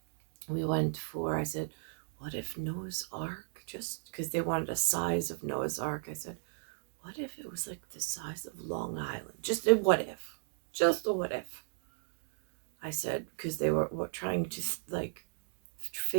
for, I said, what if Noah's Ark, just because they wanted a size of Noah's Ark, I said, what if it was like the size of Long Island? Just a what if. Just a what if. I said, because they were trying to like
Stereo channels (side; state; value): left; silent; digital silence